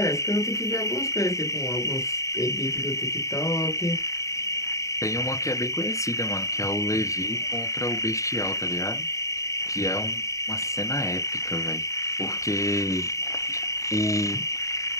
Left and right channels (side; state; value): right; late; 0.15 ms